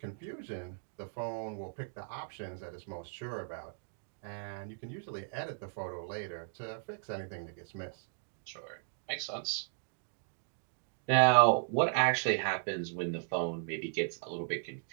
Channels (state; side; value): silent; left; digital silence